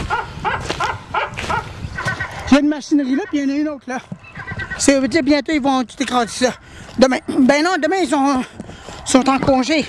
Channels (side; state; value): both; identical; correlation 1.00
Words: Il y a une machinerie là, puis il y en a une autre là. Ça veut dire bientôt ils vont tout écraser ça. Demain. Ben non, demain ils sont en congé.